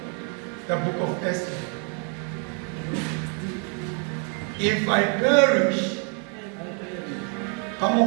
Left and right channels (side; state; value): left; quieter; 39.9 dB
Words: the book of Esther. If I perish, come